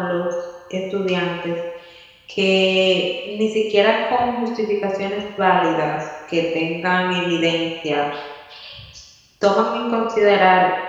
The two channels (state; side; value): identical; both; correlation 1.00